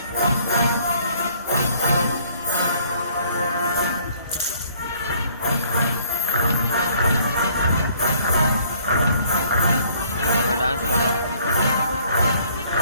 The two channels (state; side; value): inverted; both; correlation -0.60